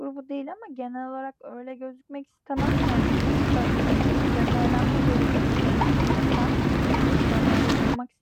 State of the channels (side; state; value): both; identical; correlation 1.00